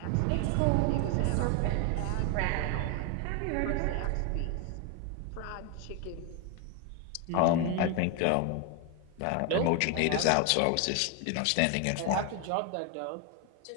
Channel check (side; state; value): both; different; correlation 0.01